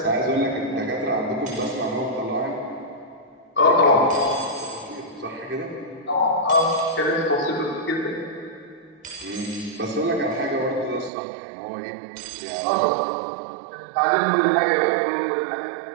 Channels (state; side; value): drops out; left; at 11.1 s